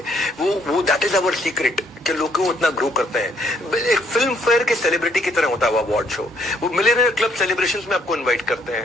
वो दैट इज अवर सीक्रेट कि लोग क्यों इतना ग्रो करते हैं। एक फिल्म फेयर के सेलिब्रिटी की तरह होता है वो अवार्ड शो। वो मिलियनेयर क्लब सेलिब्रेशंस में आपको इनवाइट करते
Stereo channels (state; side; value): normal; both; correlation 0.67